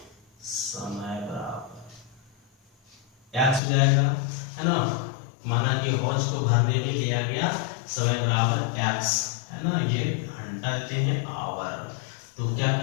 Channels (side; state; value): right; drops out; at 3.6 s